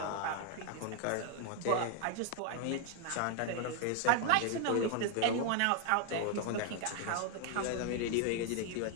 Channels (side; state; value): both; different; correlation 0.01